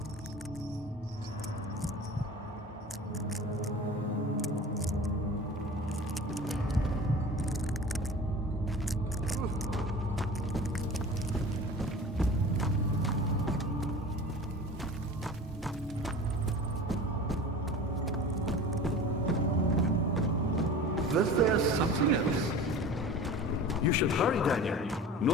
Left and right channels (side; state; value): both; normal; correlation 0.37